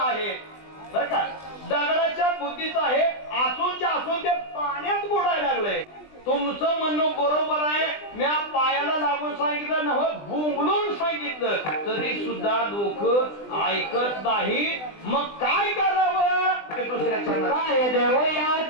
आहे बर का, दगडाच्या बुद्धीचा आहे, असूनच्या असून ते पाण्यात बुडायला लागले. तुमचं म्हणणं बरोबर आहे, मी पायाला लागून सांगितलं ना, भुंगलून सांगितलं तरी सुद्धा लोक ऐकत नाही. मग काय करावं ते दुसऱ्या चरणात काय देवया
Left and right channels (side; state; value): right; late; 20 ms